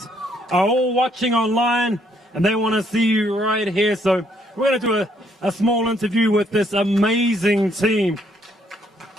are all watching online and they want to see you right here. So we're going to do a small interview with this amazing team.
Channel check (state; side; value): normal; both; correlation 0.69